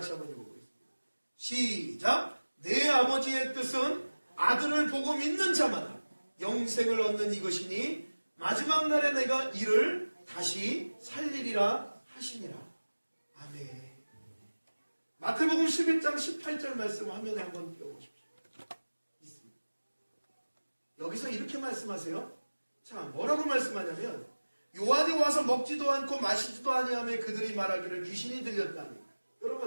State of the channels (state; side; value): inverted; both; correlation -1.00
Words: 한번 읽어보겠습니다. 시작! 내 아버지의 뜻은 아들을 보고 믿는 자마다 영생을 얻는 이것이니 마지막 날에 내가 이를 다시 살리리라 하시니라. 아멘. 마태복음 11장 18절 말씀 화면에 한번 띄워보십시오. 있습니다. 여기서 이렇게 말씀하세요. 자, 뭐라고 말씀하냐면 요한이 와서 먹지도 않고 마시지도 아니하며 그들이 말하기를 귀신이 들렸다니.